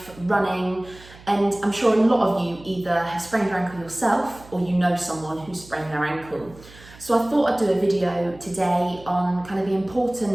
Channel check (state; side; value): noise; right; hum, 21 dB below the sound